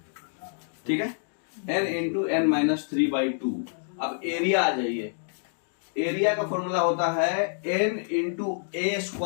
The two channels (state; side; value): silent; right; digital silence